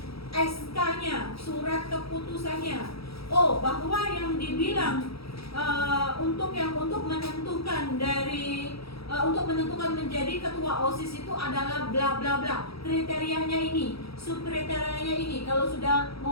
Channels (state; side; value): late; right; 0.76 ms